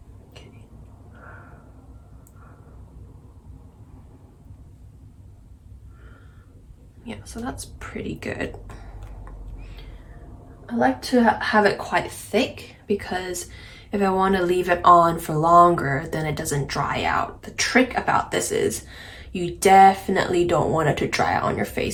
Okay. Yeah, so that's pretty good. I like to have it quite thick because if I want to leave it on for longer, then it doesn't dry out. The trick about this is you definitely don't want it to dry out on your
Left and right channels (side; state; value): both; identical; correlation 1.00